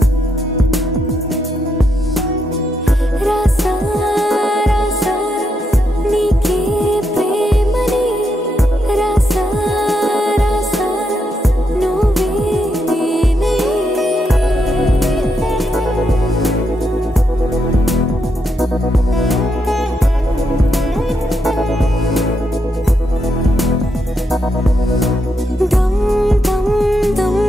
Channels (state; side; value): normal; both; correlation 0.81